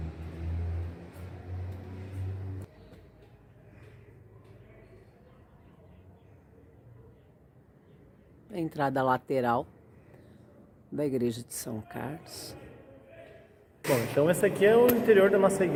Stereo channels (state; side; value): identical; both; correlation 1.00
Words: A entrada lateral da igreja de São Carlos. Bom, então esse aqui é o interior da nossa